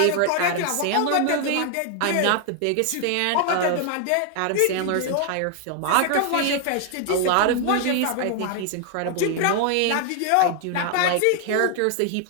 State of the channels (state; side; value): different; both; correlation 0.00